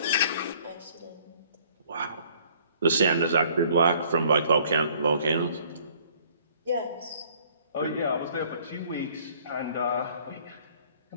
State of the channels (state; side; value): inverted; both; correlation -0.58